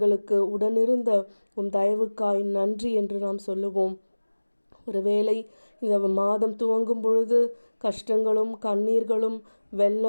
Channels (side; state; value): both; inverted; correlation -1.00